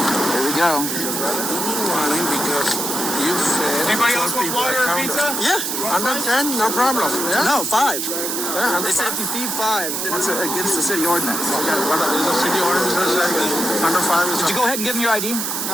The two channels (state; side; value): noise; right; hiss, 2 dB below the sound